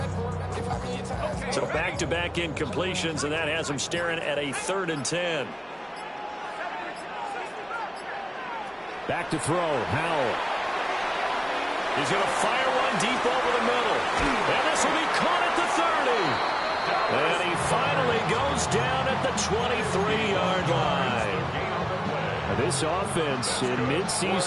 So back-to-back incompletions, and that has him staring at a 3rd and 10. Back to throw, Howell. He's going to fire one deep over the middle. And this will be caught at the 30. And he finally goes down at the 23-yard line. Now this offense in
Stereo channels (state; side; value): identical; both; correlation 1.00